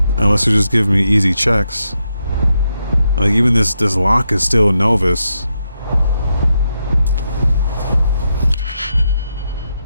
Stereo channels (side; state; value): both; inverted; correlation -0.83